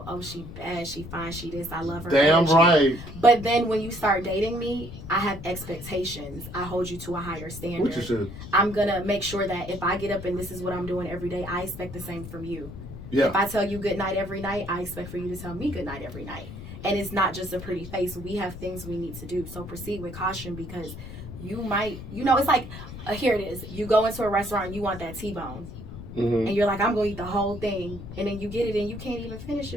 oh, she bad, she fine, she this, I love her. Damn right. But then when you start dating me, I have expectations. I hold you to a higher standard. Which you should. I'm going to make sure that if I get up and this is what I'm doing every day, I expect the same from you. Yeah. If I tell you good night every night, I expect for you to tell me good night every night. And it's not just a pretty face. We have things we need to do. So proceed with caution, because you might, it's like, here it is. You go into a restaurant and you want that T-bone. And you're like, I'm going to eat the whole thing. And then you get it and you can't even finish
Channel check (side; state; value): left; noise; rumble, 11 dB below the sound